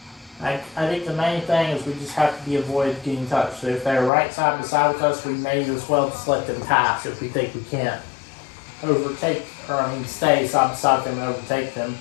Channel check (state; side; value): drops out; right; at 4.1 s